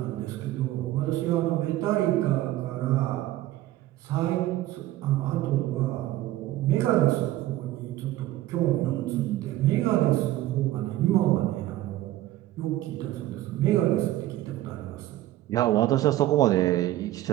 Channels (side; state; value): left; quieter; 15.1 dB